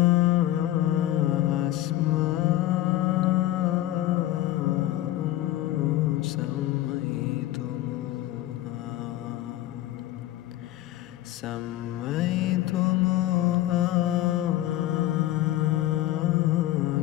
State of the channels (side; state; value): right; quieter; 14.5 dB